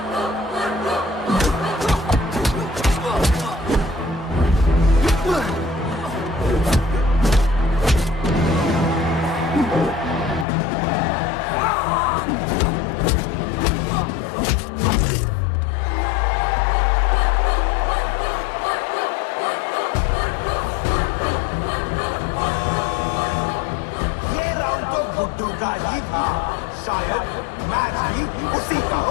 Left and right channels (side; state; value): right; drops out; at 10.5 s